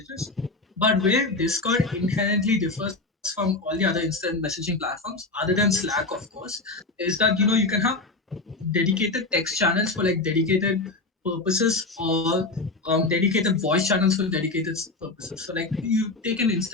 But where Discord inherently differs from all the other instant messaging platforms, other than Slack, of course, is that you can have dedicated text channels for like dedicated purposes, or dedicated voice channels for dedicated purposes. So like you take an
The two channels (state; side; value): quieter; right; 3.3 dB